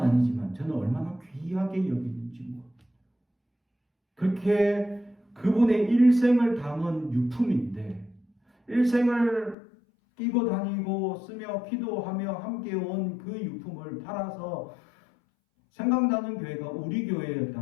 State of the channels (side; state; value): right; drops out; at 9.6 s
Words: 저는 얼마나 귀하게 여기는지 모릅니다. 그렇게 그분의 일생을 담은 유품인데 일생을 끼고 다니고 쓰며 기도하며 함께 온 그 유품을 팔아서 생각나는 교회가 우리